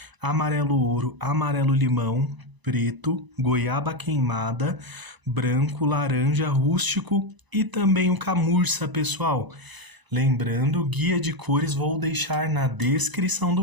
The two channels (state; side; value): late; left; 1.0 ms